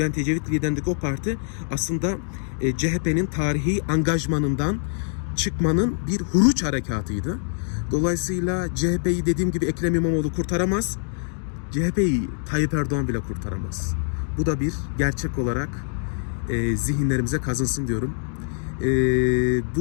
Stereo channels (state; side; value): silent; right; digital silence